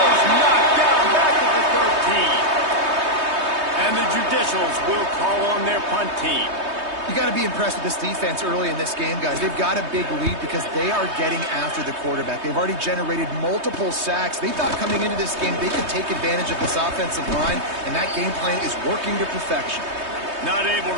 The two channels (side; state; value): left; late; 3.2 ms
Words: knocked down back at the 13. And the Judicials will call on their punt team. You got to be impressed with this defense early in this game, guys. They've got a big lead because they are getting after the quarterback. They've already generated multiple sacks. They thought coming into this game they could take advantage of this offensive line, and that game plan is working to perfection. Not able